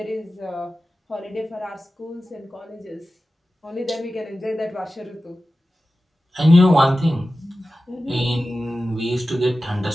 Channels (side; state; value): both; normal; correlation 0.94